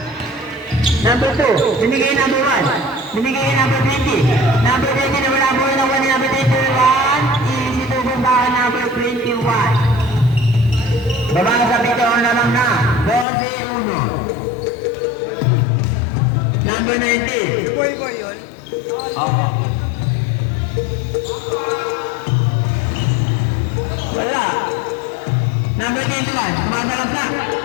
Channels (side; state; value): right; drops out; at 13.2 s